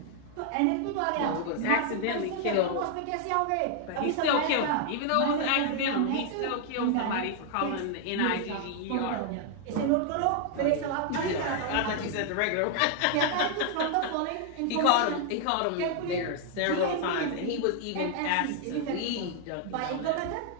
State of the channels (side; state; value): both; different; correlation 0.00